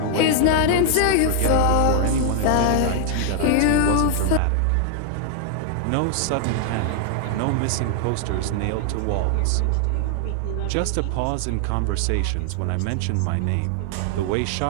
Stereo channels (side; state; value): both; different; correlation 0.00